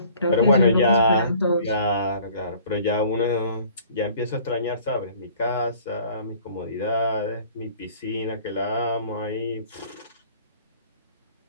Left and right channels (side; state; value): both; inverted; correlation -0.53